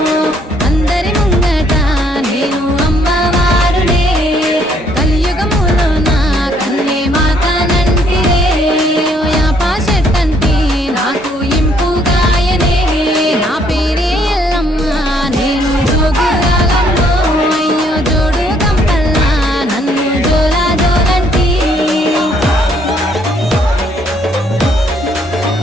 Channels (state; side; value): normal; both; correlation 0.67